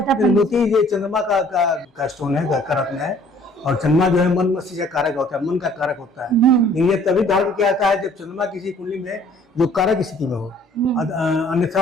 है? मोती ये चंद्रमा का स्टोन है, का रत्न है, और चंद्रमा जो है मन मस्तिष्क का कारक होता है, मन का कारक होता है। लेकिन ये तभी धारण किया जाता है जब चंद्रमा किसी कुंडली में जो कारक स्थिति में हो।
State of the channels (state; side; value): normal; both; correlation 0.57